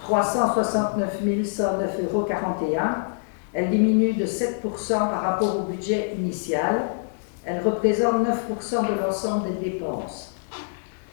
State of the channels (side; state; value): right; silent; digital silence